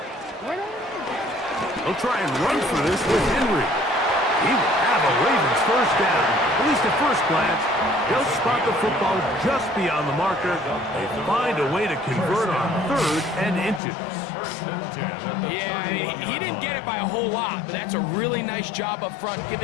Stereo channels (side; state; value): right; drops out; at 13.8 s